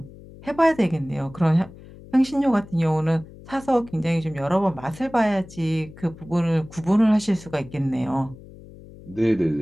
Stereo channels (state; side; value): noise; left; hum, 19 dB below the sound